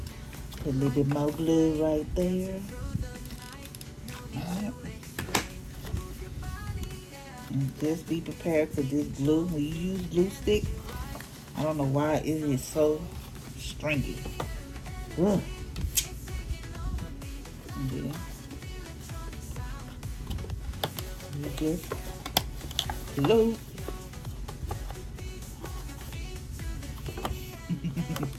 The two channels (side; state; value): both; identical; correlation 1.00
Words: Put a little bit more glue right there. Alright. And just be prepared for this glue. When you use glue stick, I don't know why it is so stringy. Ugh. And then you just glue.